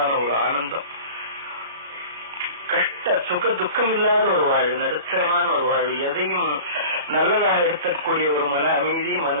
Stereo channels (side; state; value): both; inverted; correlation -0.39